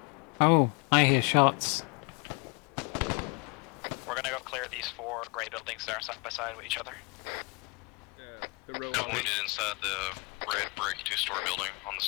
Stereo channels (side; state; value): right; quieter; 31.0 dB